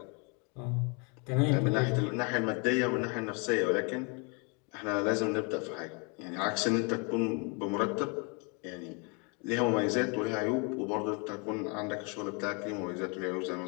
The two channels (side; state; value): right; quieter; 33.6 dB